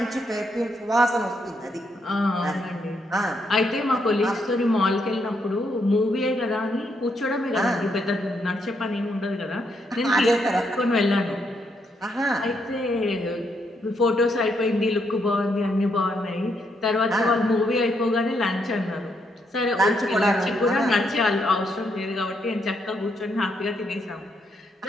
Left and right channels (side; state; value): both; normal; correlation 0.77